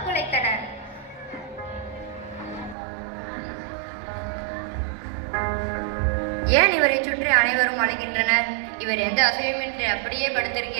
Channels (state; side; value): drops out; left; at 2.8 s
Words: குலைத்தன. ஏன் இவரை சுற்றி அனைவரும் அழைக்கின்றனர்? இவர் எந்த அசையுமின்றி அப்படியே